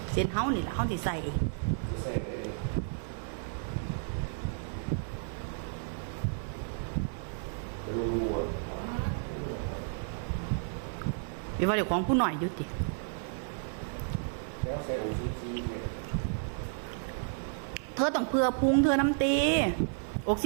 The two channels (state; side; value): silent; left; 56 dB below the other